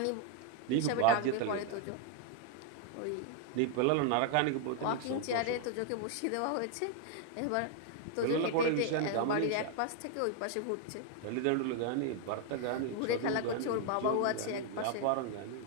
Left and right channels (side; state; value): both; different; correlation 0.00